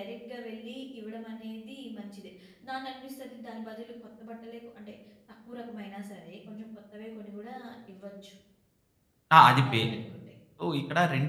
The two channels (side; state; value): both; identical; correlation 1.00